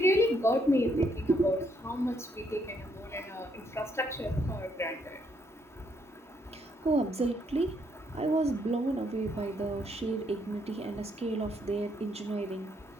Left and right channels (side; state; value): both; normal; correlation 0.72